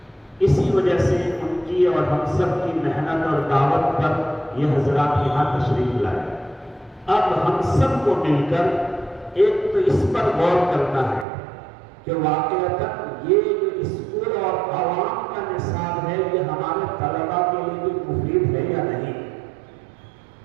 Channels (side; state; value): left; drops out; at 11.2 s